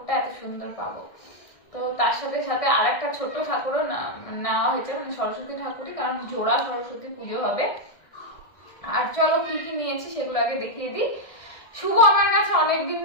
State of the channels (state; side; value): late; right; 1.6 ms